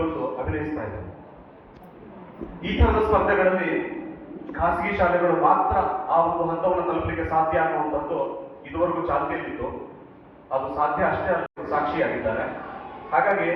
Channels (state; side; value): identical; both; correlation 1.00